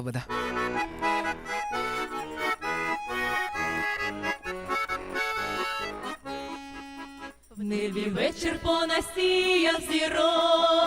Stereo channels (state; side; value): identical; both; correlation 1.00